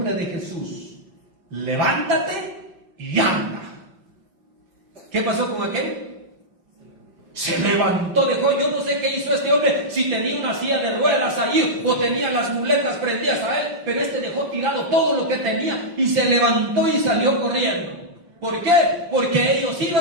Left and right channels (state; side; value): late; left; 5.8 ms